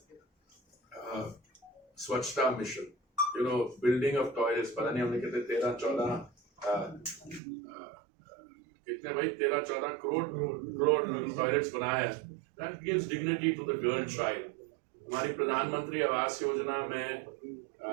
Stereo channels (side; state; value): left; drops out; at 7.4 s